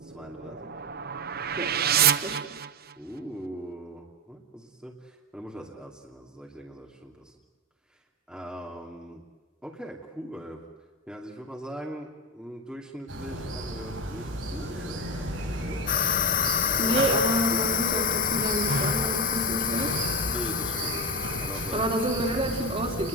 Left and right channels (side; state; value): both; normal; correlation 0.16